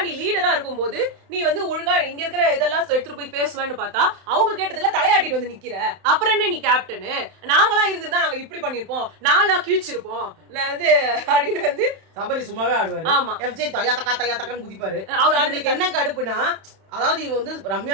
நீ லீடரா இருக்கும்போது நீ வந்து ஒழுங்கா இங்க இருக்கிற இதெல்லாம் எடுத்துட்டு போய் பேசுவேன்னு பார்த்தா அவங்க கேட்டதுல தலையாட்டிட்டு வந்து நிக்கிற. அப்புறம் என்ன நீ கேப்டனு? நாங்களாம் இருந்துதான் நாங்க இப்படி பண்ணிருப்போம், நாங்களா கிழிச்சிருப்போம் நான் வந்து அப்படின்னு வந்து சபரி சும்மாவே ஆடுவாரு. ஆமா, FJ தயா தக்கான்னு குதிப்பாரு. அவருக்கு என்ன கடுப்புனா, அதாவது இவ வந்து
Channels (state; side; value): late; left; 31 ms